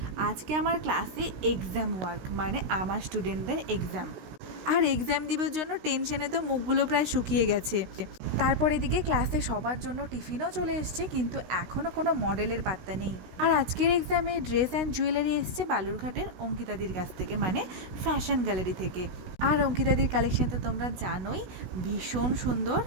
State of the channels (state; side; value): late; left; 16 ms